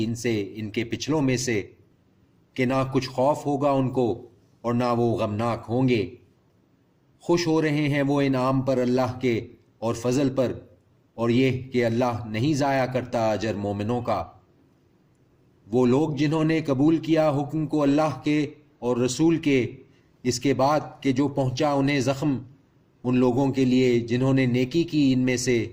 ان سے ان کے پچھلوں میں سے، کہ نہ کچھ خوف ہوگا ان کو اور نہ وہ غمناک ہوں گے۔ خوش ہو رہے ہیں وہ انعام پر اللہ کے اور فضل پر، اور یہ کہ اللہ نہیں ضائع کرتا اجر مومنوں کا۔ وہ لوگ جنہوں نے قبول کیا حکم کو اللہ کے اور رسول کے اس کے بعد کہ جو پہنچا انہیں زخم، ان لوگوں کے لیے جنہوں نے نیکی کی ان میں سے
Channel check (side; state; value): both; identical; correlation 1.00